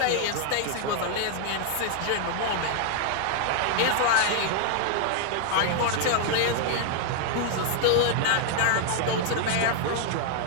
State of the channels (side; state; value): both; different; correlation 0.00